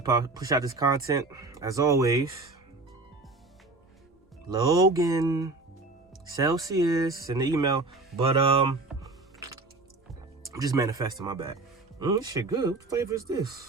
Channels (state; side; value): quieter; left; 3.3 dB